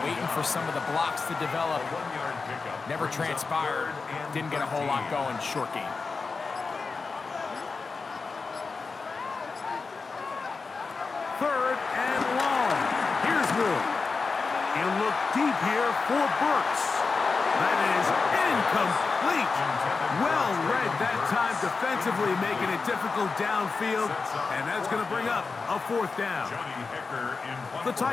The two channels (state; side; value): quieter; right; 4.5 dB